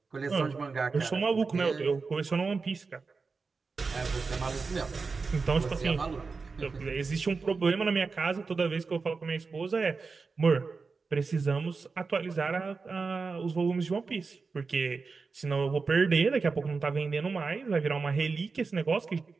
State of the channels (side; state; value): left; quieter; 4.5 dB